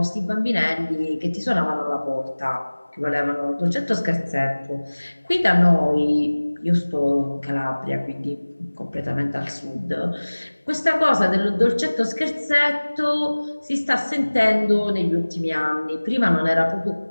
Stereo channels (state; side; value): inverted; both; correlation -1.00